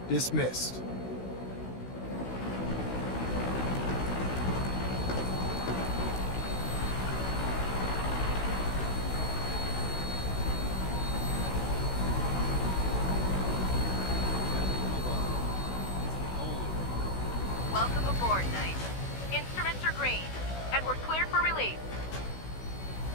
Dismissed. Welcome aboard, Knight. Instruments are green, and we're cleared for release.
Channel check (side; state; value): right; late; 16 ms